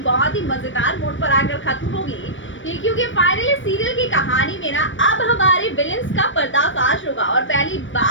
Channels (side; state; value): right; late; 0.56 ms